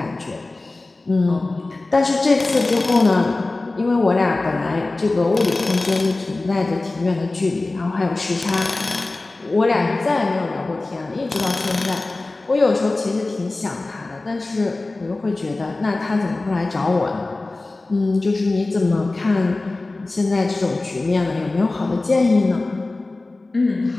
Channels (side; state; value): right; quieter; 3.1 dB